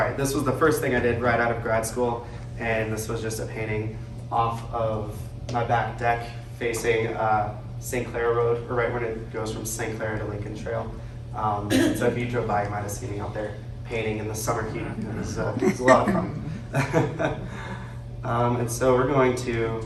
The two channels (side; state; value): both; identical; correlation 1.00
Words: this was the first thing I did right out of grad school, and this was just a painting off of my back deck facing St. Clair Road, or right when it goes from St. Clair to Lincoln Trail. So if you drove by, you might have seen me out there painting in the summer heat. It was a lot of fun. And so we're going to